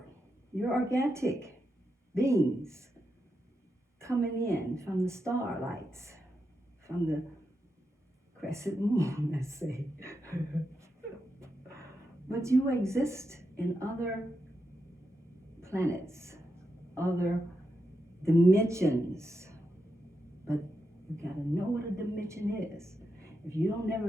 You're organic beings coming in from the starlights, from the crescent moon, let's say. But you exist in other planets, other dimensions. But you gotta know what a dimension is. If you don't never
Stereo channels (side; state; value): both; normal; correlation 0.86